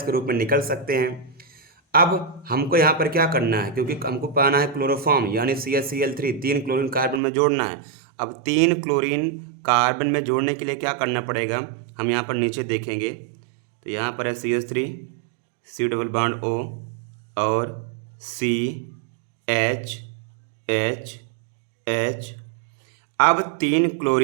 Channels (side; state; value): left; drops out; at 7.2 s